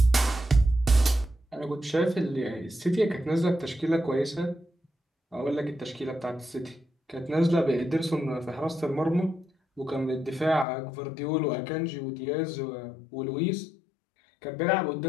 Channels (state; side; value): drops out; right; at 10.7 s